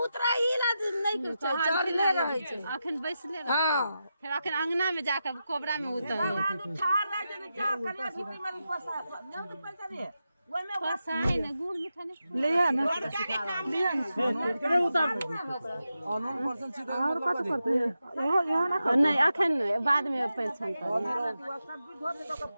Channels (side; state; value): both; inverted; correlation -0.89